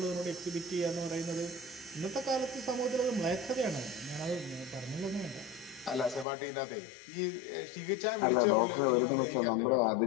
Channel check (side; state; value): right; drops out; at 6.2 s